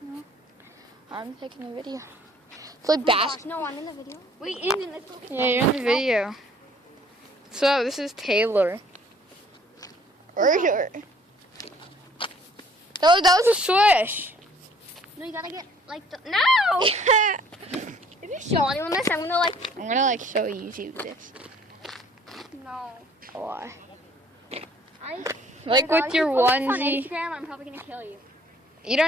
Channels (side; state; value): both; normal; correlation 0.57